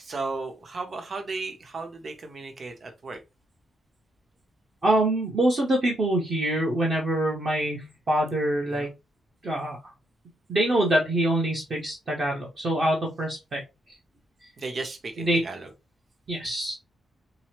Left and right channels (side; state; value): both; normal; correlation 0.76